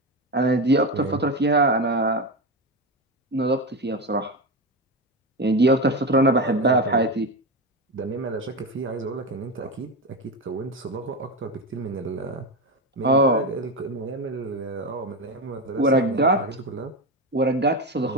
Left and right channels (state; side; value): normal; both; correlation 0.17